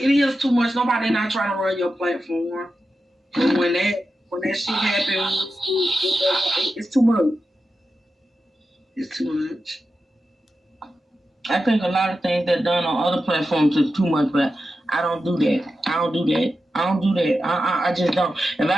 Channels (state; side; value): normal; both; correlation 0.91